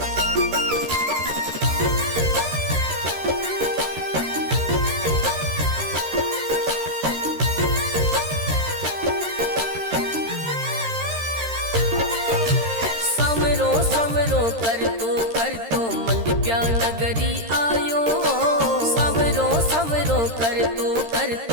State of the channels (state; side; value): late; left; 13 ms